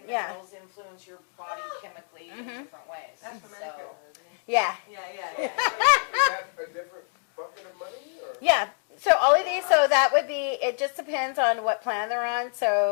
Yeah. minerals influence your body chemically in different ways. That's for So- Medicare, isn't it? Yeah. Yeah. Is that a different bucket of money? Or? Yeah. So all of these, so that would be, it just depends on what plan they're on.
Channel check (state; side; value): silent; right; 60 dB below the other